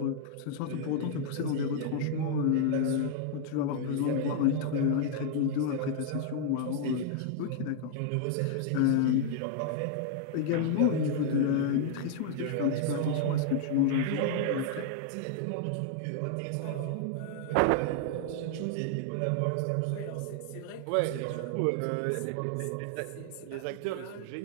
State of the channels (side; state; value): both; different; correlation 0.00